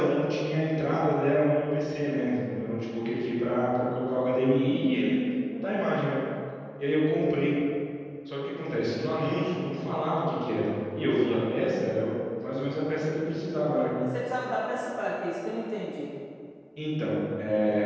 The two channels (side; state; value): both; identical; correlation 1.00